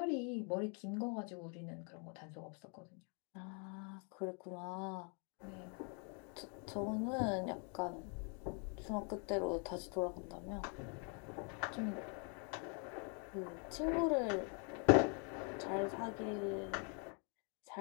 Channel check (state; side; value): quieter; right; 38.3 dB